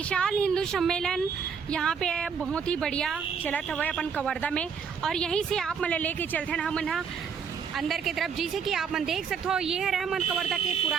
हिंदू सम्मेलन यहाँ पे बहुत ही बढ़िया चलत हुआ अपन कवर्धा में। और यहीं से आप मन लेके चलते हैं हम अंदर की तरफ। जैसे कि आप मन देख सकते हो, ये है रहमान कवर्धा के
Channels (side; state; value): left; quieter; 6.5 dB